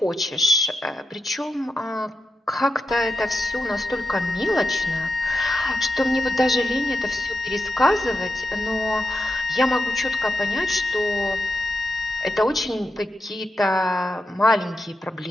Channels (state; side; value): normal; both; correlation 0.88